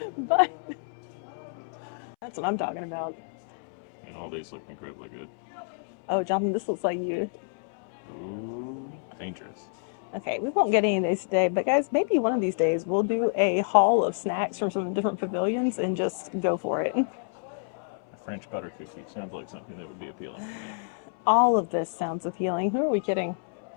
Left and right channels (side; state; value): right; silent; 59 dB below the other